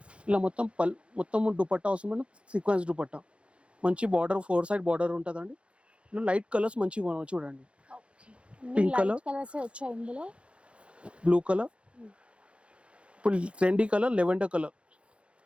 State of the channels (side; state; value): left; late; 0.059 ms